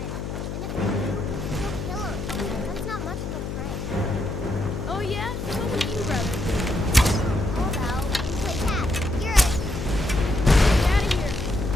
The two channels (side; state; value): left; noise; hum, 5 dB below the sound